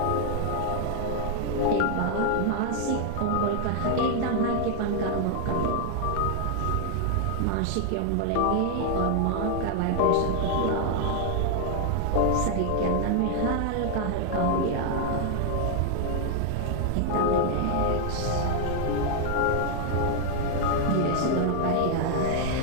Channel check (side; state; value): both; different; correlation 0.00